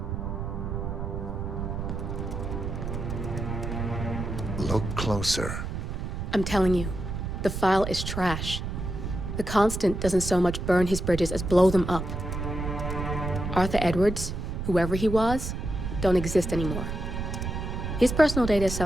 Look closer. I'm telling you, the file is trash. The Constant doesn't so much burn his bridges as blow them up. Arthur Edwards, whoever he was, don't exist anymore. His personal data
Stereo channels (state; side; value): noise; right; rumble, 4 dB below the sound